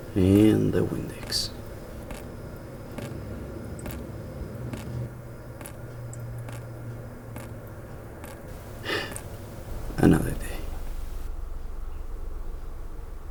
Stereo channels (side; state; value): both; identical; correlation 1.00